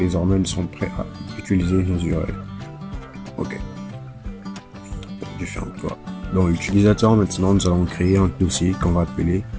nous sommes prêts à utiliser nos URL. Ok. Je ferme quoi. Dans l'utilisateur, maintenant, nous allons créer un dossier qu'on va appeler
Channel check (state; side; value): identical; both; correlation 1.00